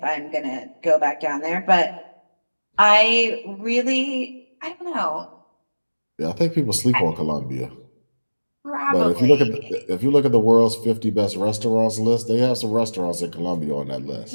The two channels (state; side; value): inverted; both; correlation -1.00